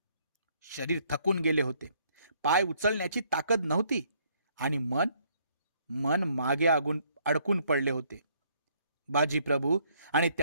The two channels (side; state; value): both; inverted; correlation -0.67